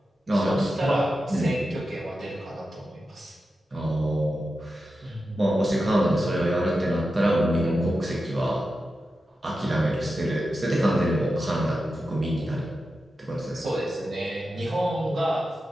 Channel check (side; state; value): both; normal; correlation 0.91